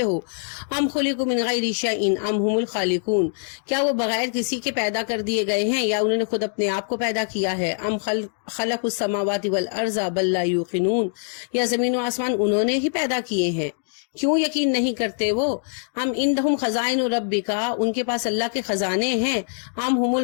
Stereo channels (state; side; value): silent; right; digital silence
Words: ہو۔ ام خلقوا من غیر شیء ام هم الخالقون، کیا وہ بغیر کسی کے پیدا کر دیے گئے ہیں یا انہوں نے خود اپنے آپ کو پیدا کیا ہے۔ ام خلق السماوات والارض بل لا یوقنون، یا زمین و آسمان انہوں نے ہی پیدا کیے ہیں، کیوں یقین نہیں کرتے وہ۔ ہم عندہم خزائن ربک، ان کے پاس اللہ کے خزانے ہیں۔ ہم ہم